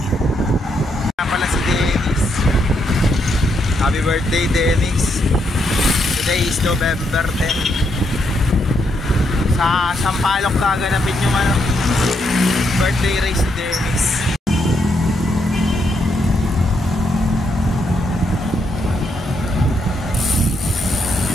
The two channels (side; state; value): both; normal; correlation 0.78